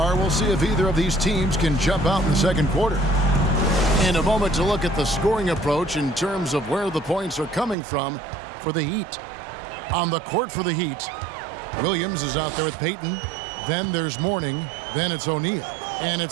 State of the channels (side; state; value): left; drops out; at 7.8 s